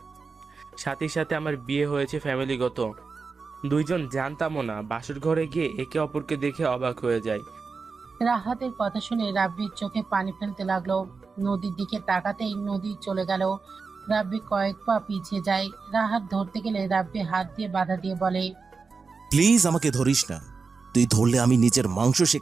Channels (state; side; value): quieter; left; 4.7 dB